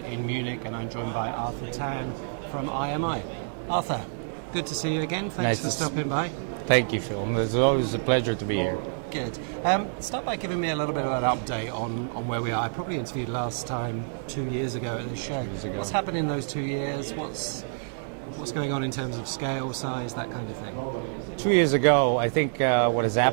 Munich, and I'm joined by Arthur Tan from IMI. Arthur, good to see you again. Thanks for stopping by. Thank you, Phil. It's always a pleasure to be here. Good. Start by giving me a little bit of an update on where we are. I probably interviewed last time 2 years ago at this show. What's happened in those 2 years? What's going on in terms of scale, size, that kind of thing? 2 years ago, I think what has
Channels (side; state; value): left; silent; digital silence